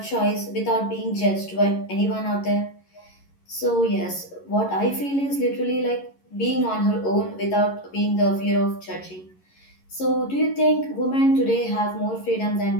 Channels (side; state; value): right; late; 11 ms